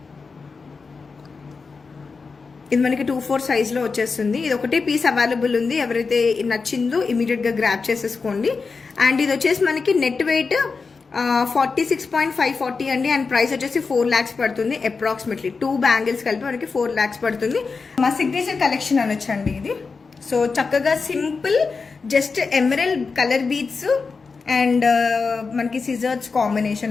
ఇది మనకి 2/4 సైజ్లో వచ్చేస్తుంది. ఇది ఒకటే పీస్ అవైలబుల్ ఉంది, ఎవరైతే నచ్చిందో ఇమీడియట్గా గ్రాప్ చేసేసుకోండి. అండ్ ఇది వచ్చేసి మనకి నెట్ వెయిట్ 46.540 అండి. అండ్ ప్రైస్ వచ్చేసి 4 lakhs పడుతుంది అప్రాక్సిమేట్లీ. 2 బ్యాంగిల్స్ కలిపి మనకి 4 lakhs పడుతుంది. మా సిగ్నేచర్ కలెక్షన్ అనొచ్చండి ఇది. సో చక్కగా simple, just emerald colour beads and మనకి సిజర్స్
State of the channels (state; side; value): quieter; right; 4.7 dB